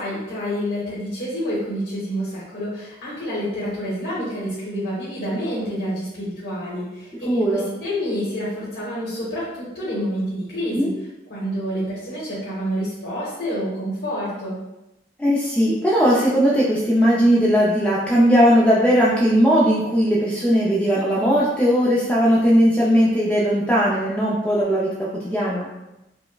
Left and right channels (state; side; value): normal; both; correlation 0.72